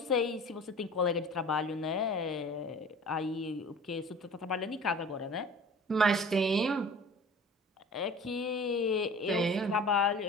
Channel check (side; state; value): both; normal; correlation 0.43